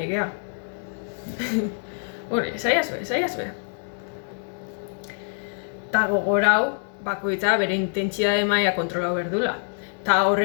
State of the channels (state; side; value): silent; right; 59 dB below the other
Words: Saiazu. Ta gogorau, bakoitza bere intentsitate maila kontrolau berdula. Ta